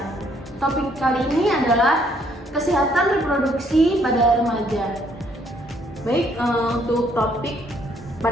Topik kali ini adalah kesehatan reproduksi pada remaja. Baik, untuk topik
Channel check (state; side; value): normal; both; correlation 0.67